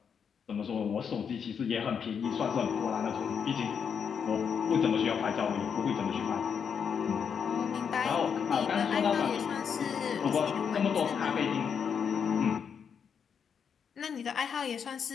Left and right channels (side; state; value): right; quieter; 7.0 dB